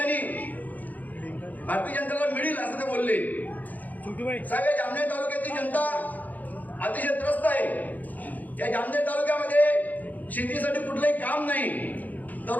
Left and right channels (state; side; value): late; right; 0.081 ms